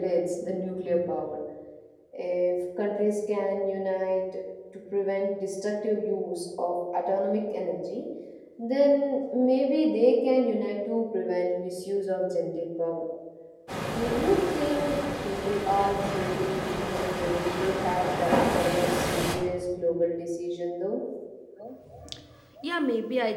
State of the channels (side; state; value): both; identical; correlation 1.00